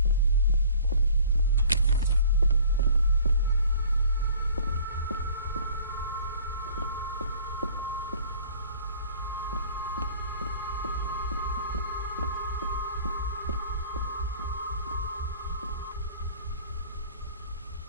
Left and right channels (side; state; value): both; inverted; correlation -0.50